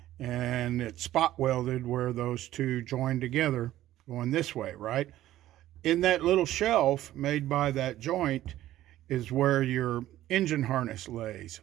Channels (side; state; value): left; quieter; 14.0 dB